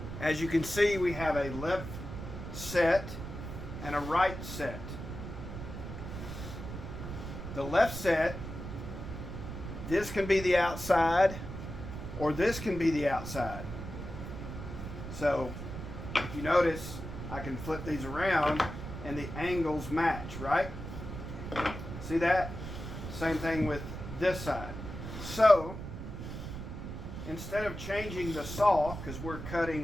As you can see, we have a left set and a right set. The left set, this can be the outside or this can be the outside. So if you notice, I can flip these around and the angles match, right? See that? Same thing with this side. So instead of changing the saw, because we're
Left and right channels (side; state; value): right; noise; rumble, 8 dB below the sound